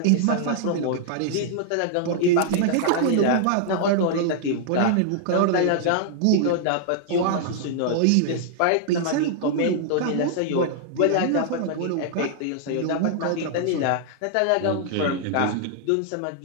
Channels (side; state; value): both; different; correlation -0.01